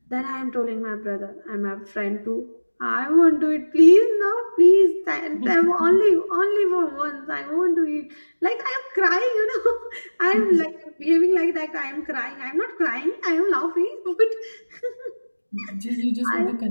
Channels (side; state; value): both; inverted; correlation -1.00